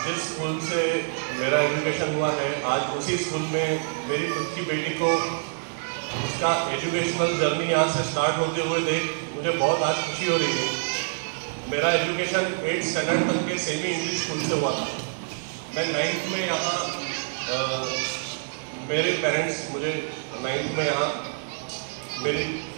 जिस स्कूल से मेरा एजुकेशन हुआ है, आज उसी स्कूल में मेरी खुद की बेटी को उसका एजुकेशनल जर्नी यहाँ से स्टार्ट होते हुए देख मुझे बहुत आज खुशी हो रही है। मेरा एजुकेशन 8th स्टैंडर्ड तक के सेमी इंग्लिश स्कूल से हुआ था। मैं 9th में यहाँ मेरे पेरेंट्स मुझे 9th में यहाँ मेरी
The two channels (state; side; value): silent; left; digital silence